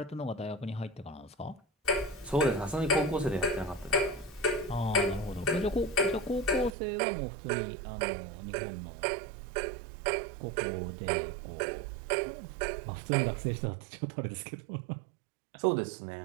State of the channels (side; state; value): left; drops out; at 6.8 s